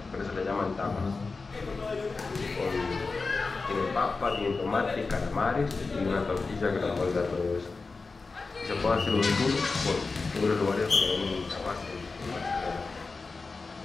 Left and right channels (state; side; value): quieter; right; 4.1 dB